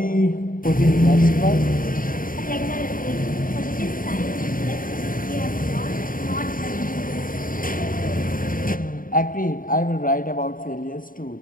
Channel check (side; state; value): right; late; 0.40 ms